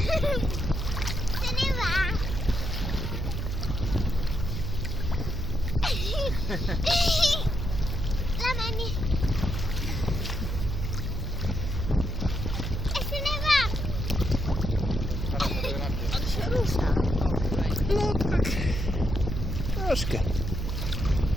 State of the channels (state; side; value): noise; right; hum, 3 dB below the sound